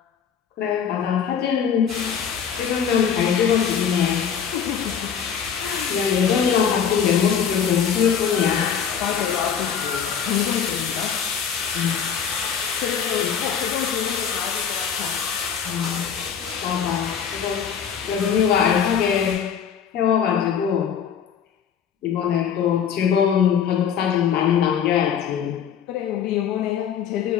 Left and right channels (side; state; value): right; quieter; 7.6 dB